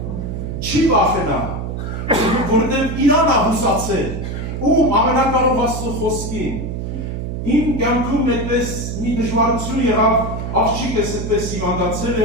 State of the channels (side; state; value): right; noise; hum, 5 dB below the sound